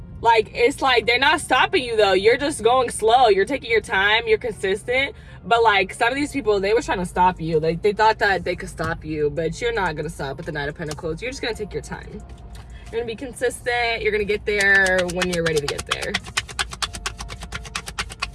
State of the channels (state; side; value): identical; both; correlation 1.00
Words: Like, it's like they're not stopping you, though. You're just going slow. You're taking your time. You're consistent. But, like, some of these people, they were trying to stop you. Like, they thought that they could stop you. But you're not going to stop with the 9 of Pentacles. You're just going to take your time. You're going to be consistent. You're going to get there when you're ready to get there.